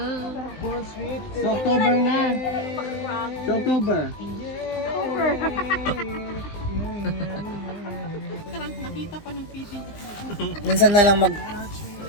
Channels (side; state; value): right; late; 19 ms